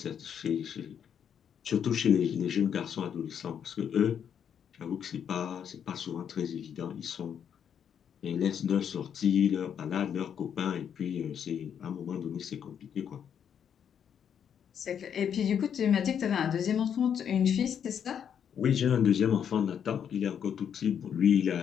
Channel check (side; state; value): right; quieter; 8.3 dB